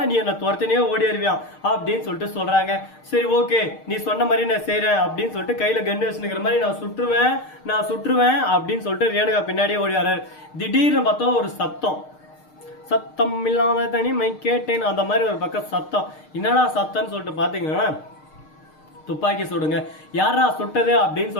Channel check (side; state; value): right; late; 6.6 ms